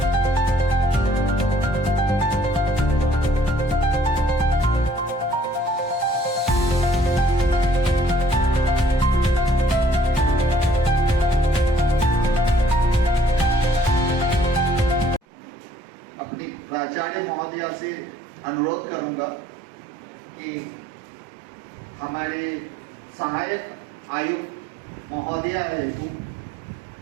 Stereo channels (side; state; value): left; drops out; at 15.2 s